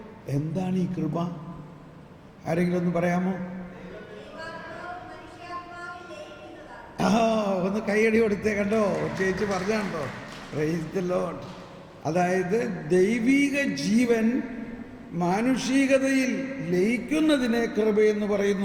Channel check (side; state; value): both; identical; correlation 1.00